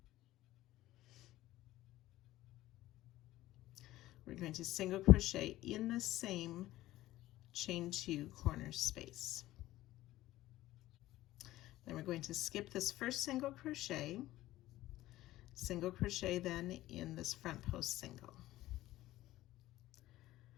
we're going to single crochet in the same chain 2 corner space. Then we're going to skip this first single crochet then in this front post single.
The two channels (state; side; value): quieter; right; 15.9 dB